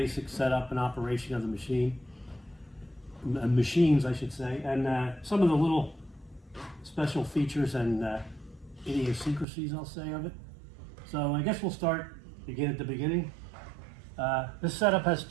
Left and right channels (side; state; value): left; drops out; at 9.5 s